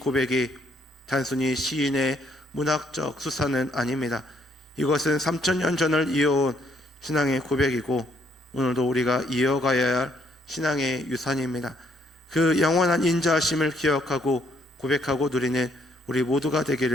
단순히 시인의 문학적 수사는 아닙니다. 이것은 3000년 전을 이어온 신앙의 고백이고 오늘도 우리가 이어가야 할 신앙의 유산입니다. 그 영원한 인자하심을 기억하고 고백하고 누리는 우리 모두가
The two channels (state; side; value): normal; both; correlation 0.69